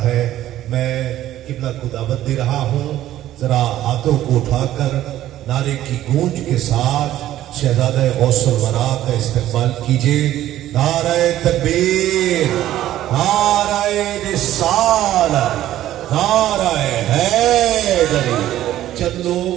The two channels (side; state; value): left; quieter; 13.3 dB